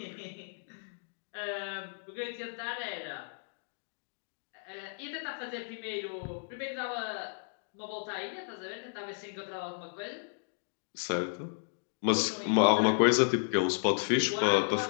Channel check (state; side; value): silent; right; digital silence